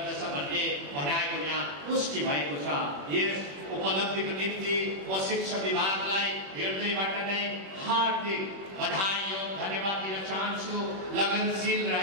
भन्ने भनाइको यहाँ पुष्टि भएको छ। यस उपलब्धिको निम्ति म शिक्षा विभागलाई हृदयबाट नै हार्दिक बधाई एवं धन्यवाद दिन चाहन्छु। लगनशील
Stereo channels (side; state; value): left; late; 21 ms